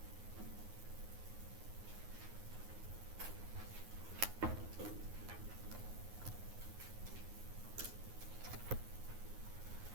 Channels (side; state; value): left; late; 9.6 ms